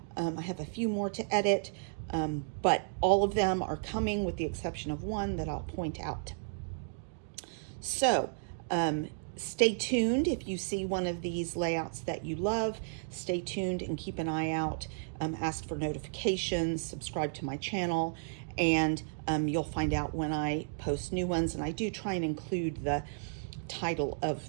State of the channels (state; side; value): silent; left; digital silence